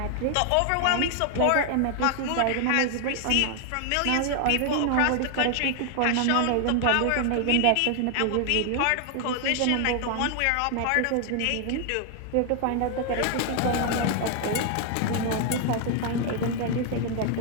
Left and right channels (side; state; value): both; different; correlation 0.00